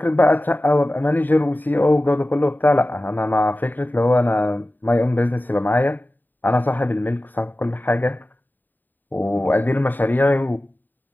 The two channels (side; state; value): right; late; 0.089 ms